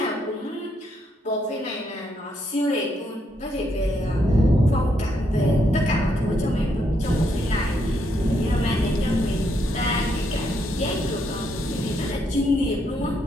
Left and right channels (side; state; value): both; normal; correlation 0.76